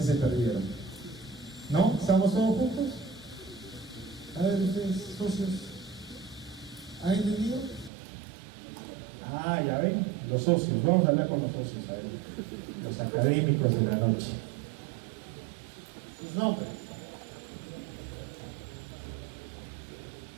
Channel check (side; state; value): left; drops out; at 7.9 s